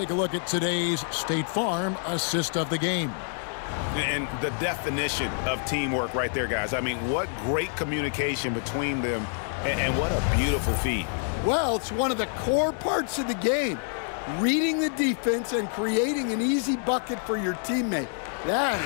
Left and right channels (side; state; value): right; silent; 60 dB below the other